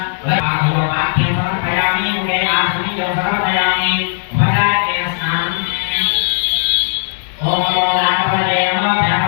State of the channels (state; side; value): silent; right; digital silence